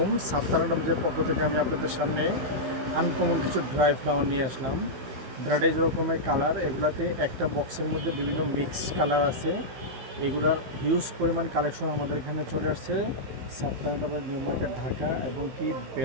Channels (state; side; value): late; left; 16 ms